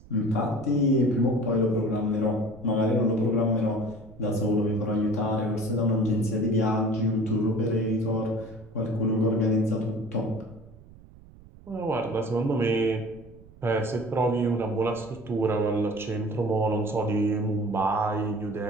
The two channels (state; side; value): noise; right; rumble, 22 dB below the sound